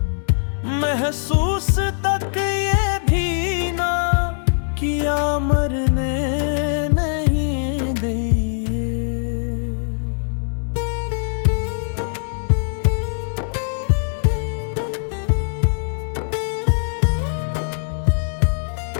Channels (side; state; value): right; silent; digital silence